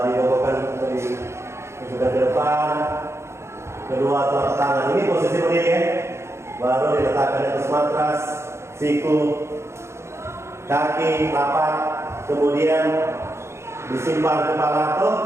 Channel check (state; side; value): late; left; 0.13 ms